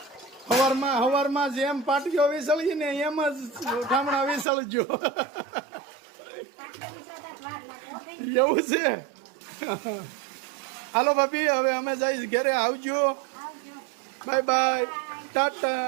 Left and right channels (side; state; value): left; drops out; at 4.5 s